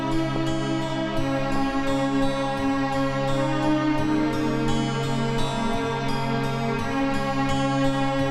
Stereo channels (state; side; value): identical; both; correlation 1.00